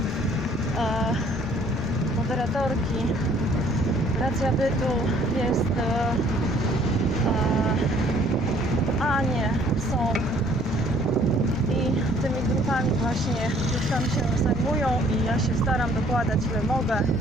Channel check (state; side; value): normal; both; correlation 0.59